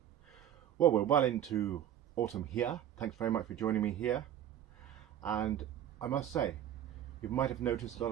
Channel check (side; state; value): left; quieter; 10.8 dB